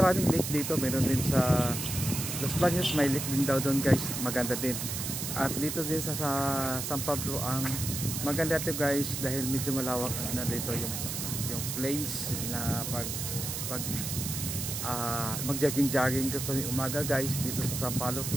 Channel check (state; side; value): noise; right; hiss, 4 dB below the sound